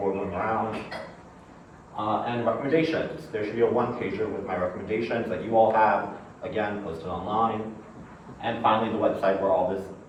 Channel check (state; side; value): identical; both; correlation 1.00